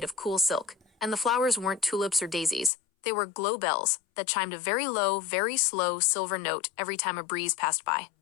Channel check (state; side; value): drops out; right; at 2.7 s